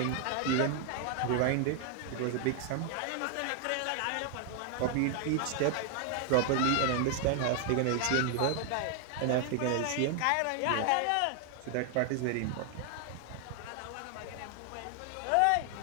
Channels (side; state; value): both; different; correlation 0.00